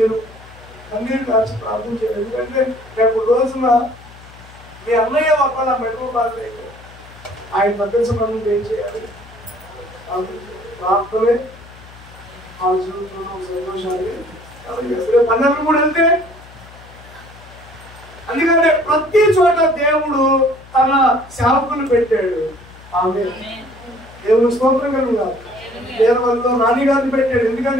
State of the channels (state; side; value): noise; left; hum, 21 dB below the sound